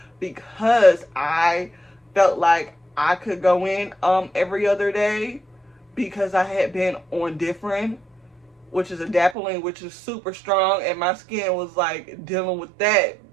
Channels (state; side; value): drops out; left; at 9.3 s